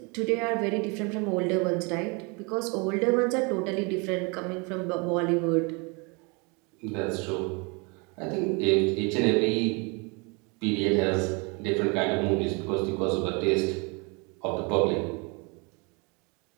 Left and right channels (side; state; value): left; quieter; 30.8 dB